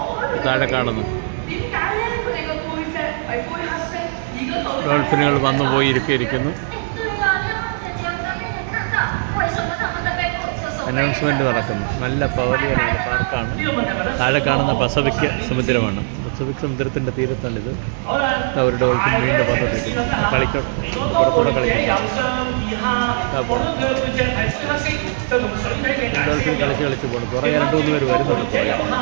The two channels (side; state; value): left; silent; 66 dB below the other